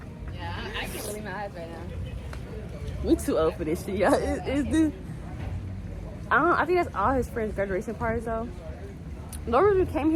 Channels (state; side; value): identical; both; correlation 1.00